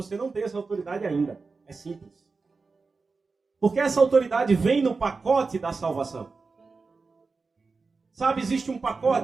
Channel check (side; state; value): left; quieter; 4.3 dB